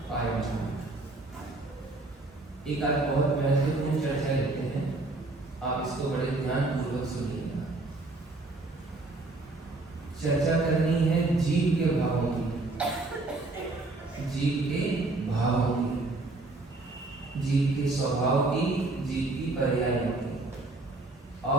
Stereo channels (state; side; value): quieter; left; 3.1 dB